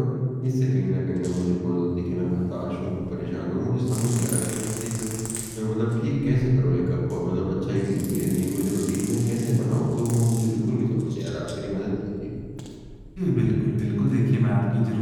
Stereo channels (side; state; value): both; identical; correlation 1.00